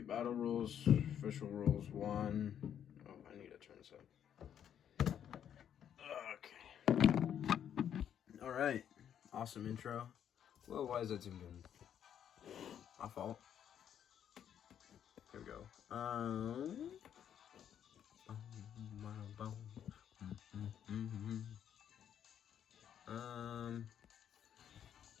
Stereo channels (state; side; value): quieter; right; 9.3 dB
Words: rules, official rules 1. Oh, I need to turn this up. Okay. Alright. Awesome intro. Whoa, why is that zoom in? My fault. Here we go. And